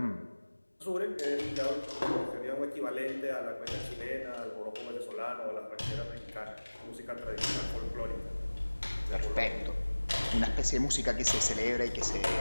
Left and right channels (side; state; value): both; inverted; correlation -1.00